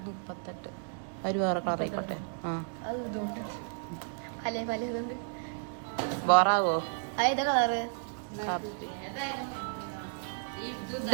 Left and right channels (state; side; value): silent; left; digital silence